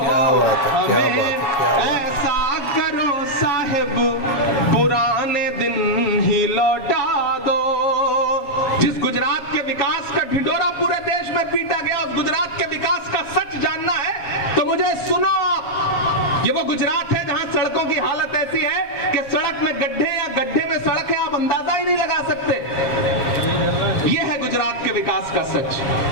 बात है, क्या बात है, क्या बात है। ऐसा करो साहिब पुराने दिन ही लौटा दो। जिस गुजरात के विकास का ढिंढोरा पूरे देश में पीटा गया, उस गुजरात के विकास का सच जानना है तो मुझे सुनो आप। ये वो गुजरात है जहां सड़कों की हालत ऐसी है कि सड़क में गड्ढे या गड्ढे में सड़क है, आप अंदाजा ही नहीं लगा सकते। ये है गुजरात के विकास का सच।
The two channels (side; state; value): right; late; 7.3 ms